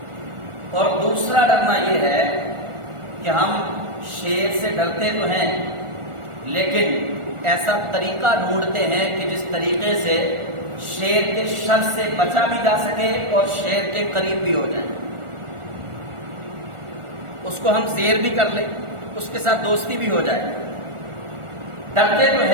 اور دوسرا ڈرنا یہ ہے کہ ہم شیر سے ڈرتے تو ہیں لیکن ایسا طریقہ ڈھونڈتے ہیں کہ جس طریقے سے شیر کے شر سے بچا بھی جا سکے اور شیر کے قریب بھی ہو جائے، اس کو ہم زیر بھی کر لیں، اس کے ساتھ دوستی بھی ہو جائے۔ ڈرتے تو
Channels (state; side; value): late; left; 1.4 ms